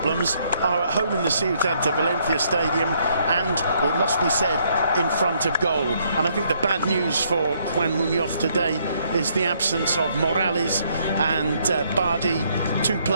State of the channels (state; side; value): inverted; both; correlation -0.70